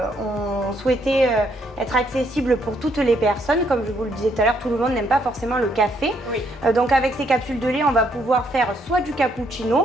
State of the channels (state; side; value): normal; both; correlation 0.71